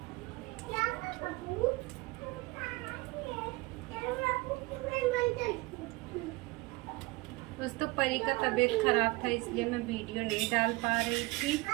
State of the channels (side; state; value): left; quieter; 23.5 dB